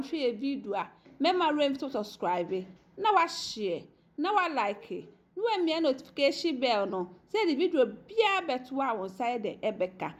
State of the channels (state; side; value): identical; both; correlation 1.00